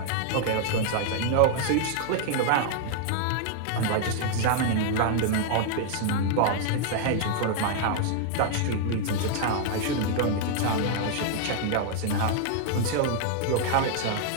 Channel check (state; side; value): different; both; correlation -0.01